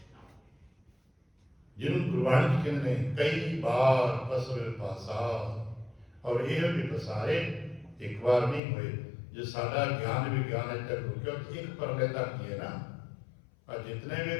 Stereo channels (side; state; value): right; drops out; at 8.6 s